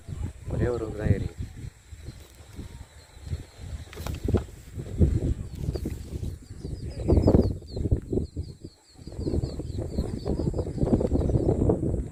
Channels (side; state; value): both; identical; correlation 1.00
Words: ஒரே ஒரு தான் ஏறி